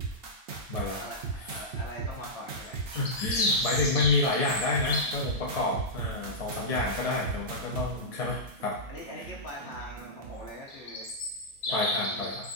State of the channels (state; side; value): normal; both; correlation -0.11